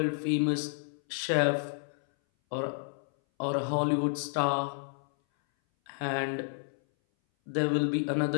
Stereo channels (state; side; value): silent; right; 57 dB below the other